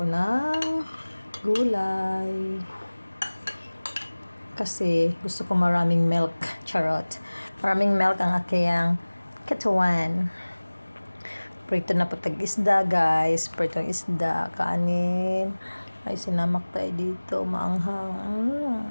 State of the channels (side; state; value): both; inverted; correlation -1.00